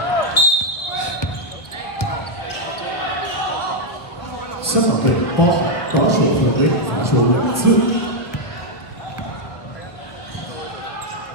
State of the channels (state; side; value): late; right; 1.4 ms